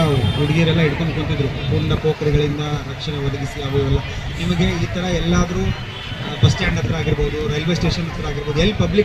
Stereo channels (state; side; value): identical; both; correlation 1.00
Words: ಹುಡುಗಿಯರೆಲ್ಲ ಹಿಡ್ಕೊಂಡು ಕುಂತಿದ್ರು, ಪೂರ್ಣ ಪೋಖರಿಗಳಿಂದ ರಕ್ಷಣೆ ಒದಗಿಸಿ ಅವೆಲ್ಲ. ನಿಮಗೆ ಈ ಥರ ಎಲ್ಲಾದರೂ ಬಸ್ ಸ್ಟ್ಯಾಂಡ್ ಹತ್ರ ಆಗಿರ್ಬೋದು, ರೈಲ್ವೆ ಸ್ಟೇಷನ್ ಹತ್ರ ಆಗಿರ್ಬೋದು, ಎಲ್ಲಿ